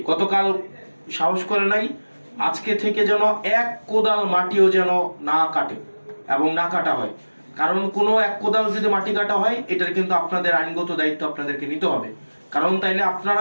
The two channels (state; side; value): inverted; both; correlation -1.00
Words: গতকাল সাহস করে নাই, আজকে থেকে যেন এক কোদাল মাটিও যেন না কাটে এবং না কাটা হয়। কারণ কোনো এক কোদাল যদি মাটি কাটা হয়, এটার কিন্তু আপনাদের আইনগত দায়িত্ব আপনাদেরকে নিতে হবে। কারণ তাইলে